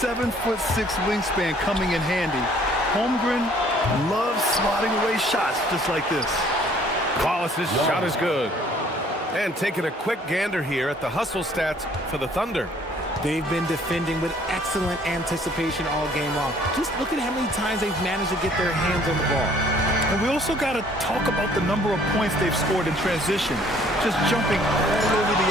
wingspan coming in handy. Holmgren loves slotting away shots just like this. Wallace's shot is good. And taking a quick gander here at the hustle stats for the Thunder. They've been defending with excellent anticipation all game long. Just look at how many times they've managed to get their hands on the ball. And we also got to talk about the number of points they've scored in transition. Just jumping all over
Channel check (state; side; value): normal; both; correlation 0.59